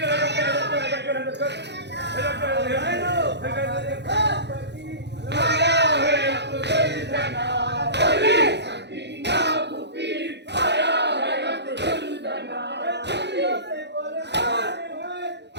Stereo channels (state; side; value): late; left; 0.50 ms